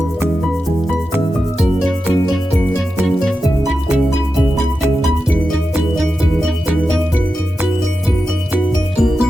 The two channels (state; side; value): normal; both; correlation 0.91